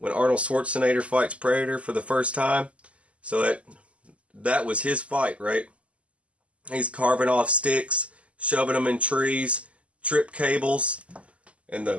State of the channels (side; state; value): left; late; 0.062 ms